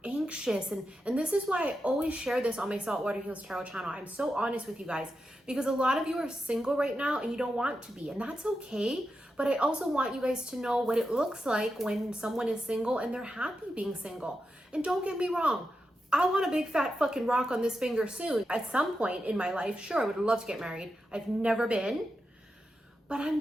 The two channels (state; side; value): normal; both; correlation 0.88